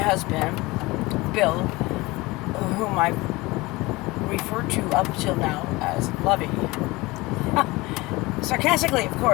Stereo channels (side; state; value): right; quieter; 21.9 dB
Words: Bill, whom I referred to up till now as Lovey. Sarcastically, of